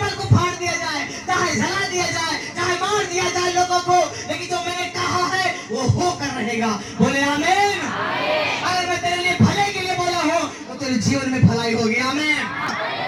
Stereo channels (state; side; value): identical; both; correlation 1.00